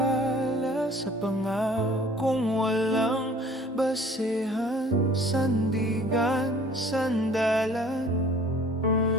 sa pangakong walang basehan, sandigan, sandalan.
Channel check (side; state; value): both; normal; correlation 0.51